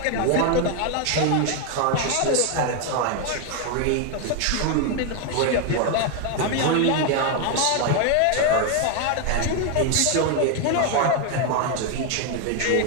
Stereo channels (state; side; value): different; both; correlation 0.01